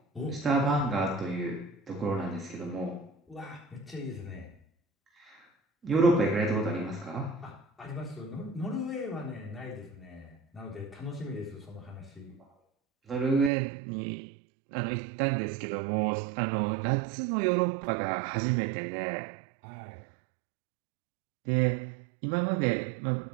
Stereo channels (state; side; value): drops out; left; at 13.5 s